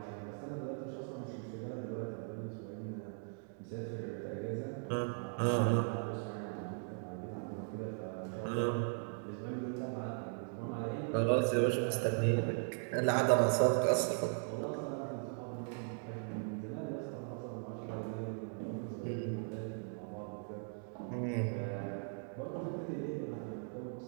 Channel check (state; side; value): silent; left; 52 dB below the other